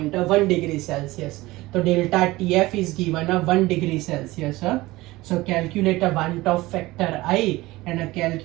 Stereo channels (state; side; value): quieter; left; 19.4 dB